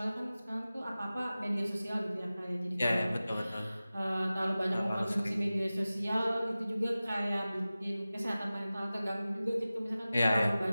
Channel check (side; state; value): both; inverted; correlation -0.96